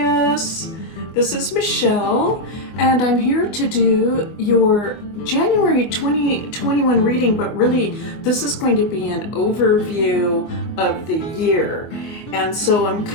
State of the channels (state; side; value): late; right; 24 ms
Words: This is Michelle, and I'm here to do your January 2021 reading, but really, this is going to be an overview of the year. And so I'm